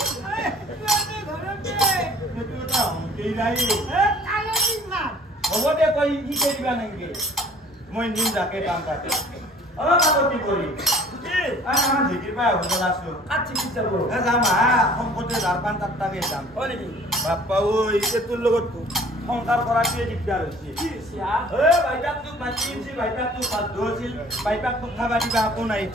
সেইটো এটা হ'ব দে তই শিকাই দিবা নেকি মই নিম যাকে কাম কাটে কাকো কি কৰি আমাৰ ঢেঁকীৰ পৰা হোটেল আছো যাম শংকতে জাৰপান তাত্তাকে যাম বাপ্পা ঐ তোৰ লগত সংসাৰ কৰাটোৱে দিগদাৰ হৈছে বাইপাক তোক মাতি আনিছিল বাইপাক তোক বাধ্য আছিল বাইপাক তোক খাবা দিবা একো নাই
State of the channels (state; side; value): normal; both; correlation 0.51